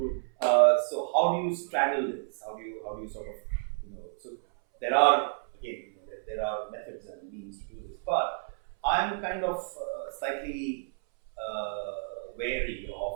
So how do you straddle this? How do you sort of, so there are, again, there are methods and means to do this, but I'm kind of slightly wary of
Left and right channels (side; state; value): left; silent; 57 dB below the other